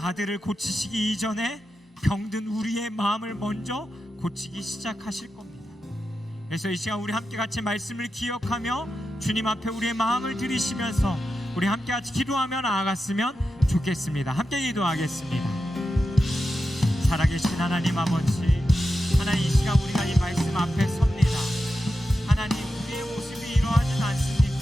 고치시기 이전에 병든 우리의 마음을 먼저 고치기 시작하실 겁니다. 그래서 이 시간 우리 함께 같이 말씀을 기억하며 주님 앞에 우리의 마음을 드리시면서 우리 함께 같이 기도하며 나아갔으면 좋겠습니다. 함께 기도하겠습니다. 살아계신 하나님 아버지, 하나님 이 시간 우리가 이 말씀 앞에 섭니다. 하나님 우리의 모습이 이러하진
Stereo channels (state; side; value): normal; both; correlation 0.90